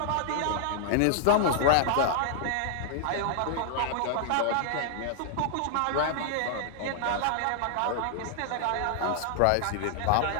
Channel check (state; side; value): different; both; correlation -0.01